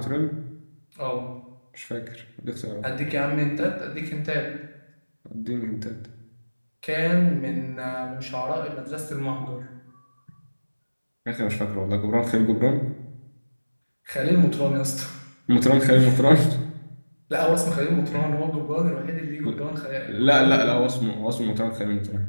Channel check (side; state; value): both; inverted; correlation -1.00